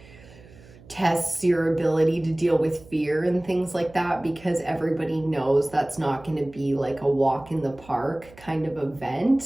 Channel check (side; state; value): right; noise; hum, 23 dB below the sound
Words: tests your ability to deal with fear and things like that, because everybody knows that's not going to be like a walk in the park kind of